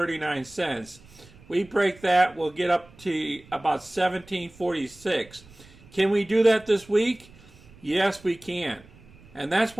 We break that, we'll get up to about $17.46. Can we do that this week? Yes, we can. And that's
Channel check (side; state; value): right; noise; rumble, 24 dB below the sound